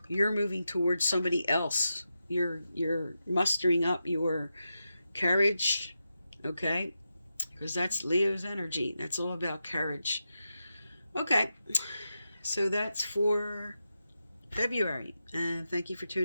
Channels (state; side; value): inverted; both; correlation -0.88